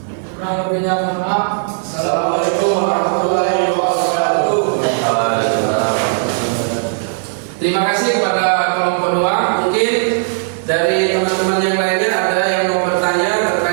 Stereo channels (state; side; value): silent; left; 60 dB below the other